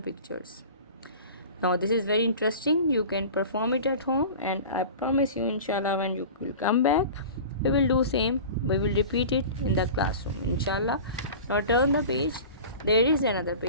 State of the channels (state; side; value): inverted; both; correlation -0.37